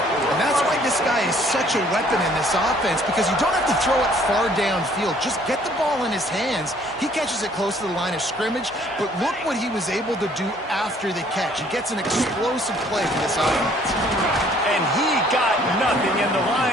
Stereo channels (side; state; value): both; normal; correlation 0.60